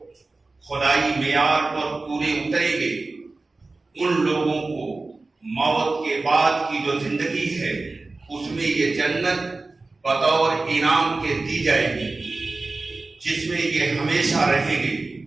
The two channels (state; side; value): quieter; left; 3.4 dB